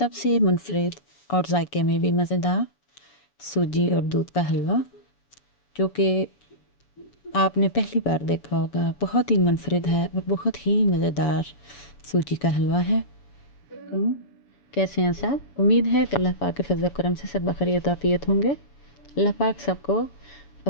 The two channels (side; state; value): right; late; 7.0 ms